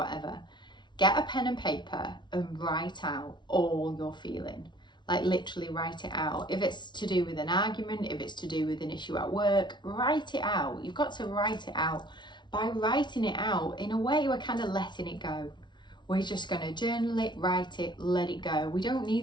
get a pen and paper and write out all you're feeling. Like literally write it out. If it's to do with an argument, if it's to do with an issue at work, write it out. You've got to write it out. By writing it out, in a way, we're kind of letting it go. We're just going to journal it, write it, let it go. We don't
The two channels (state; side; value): late; right; 0.22 ms